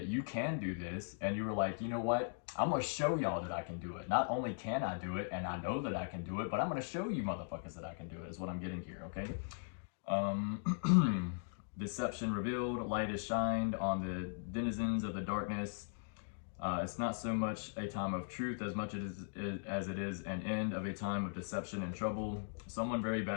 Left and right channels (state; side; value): silent; right; digital silence